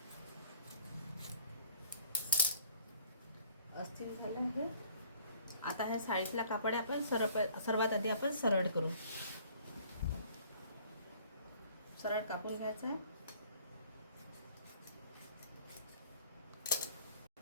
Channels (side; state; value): both; inverted; correlation -0.56